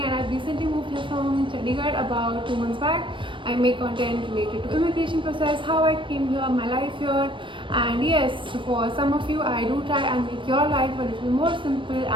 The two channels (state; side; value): late; left; 0.24 ms